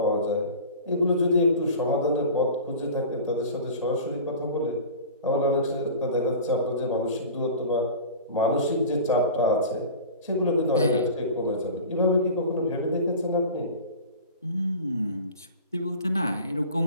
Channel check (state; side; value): inverted; both; correlation -0.37